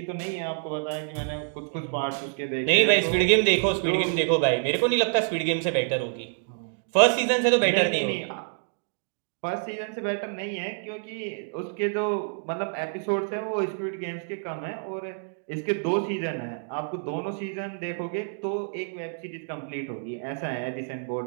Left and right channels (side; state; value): left; silent; digital silence